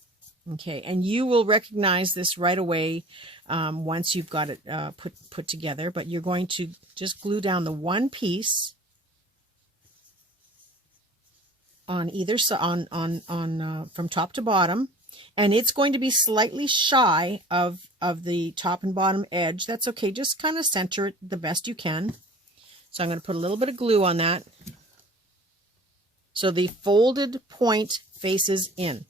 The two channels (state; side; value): normal; both; correlation 0.44